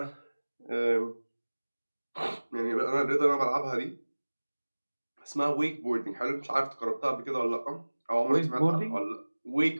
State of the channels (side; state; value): both; inverted; correlation -1.00